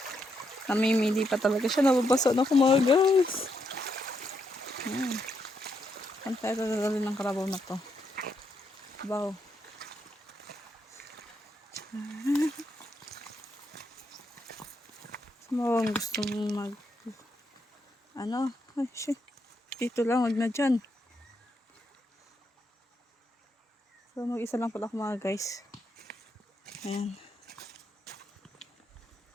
Namimili pa talaga siya. Nababasa na ako mga guys. Saan tayo dadalhin ng kalabaw na to? Wow. Ang gusto mong mag... Ano? Ay, shit. Dito lang. Huwag na dyan. So, mag-isa lang pala ako mga guys. Ayan.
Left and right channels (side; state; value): both; normal; correlation 0.79